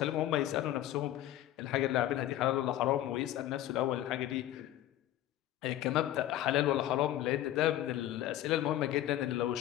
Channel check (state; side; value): quieter; right; 13.3 dB